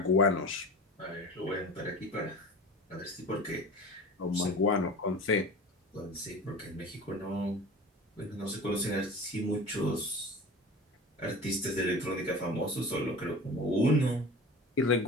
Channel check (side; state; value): both; normal; correlation 0.36